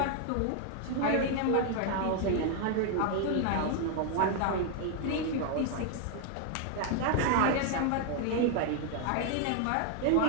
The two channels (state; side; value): different; both; correlation 0.00